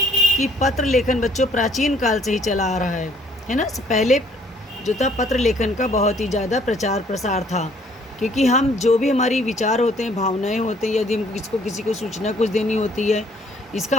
पत्र लेखन बच्चों प्राचीन काल से ही चला आ रहा है ना। पहले जो था पत्र लेखन का बहुत ही ज़्यादा प्रचार प्रसार था, क्योंकि हम जो भी हमारी विचार होते हैं, भावनाएं होते हैं, यदि हम किसी को सूचना कुछ देनी होती है, इसका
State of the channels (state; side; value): normal; both; correlation 0.61